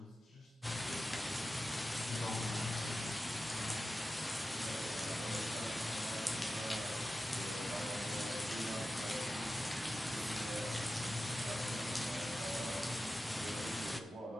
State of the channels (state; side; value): normal; both; correlation 0.93